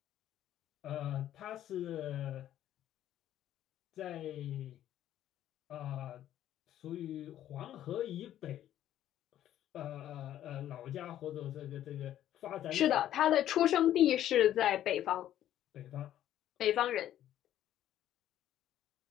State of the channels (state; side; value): quieter; right; 11.9 dB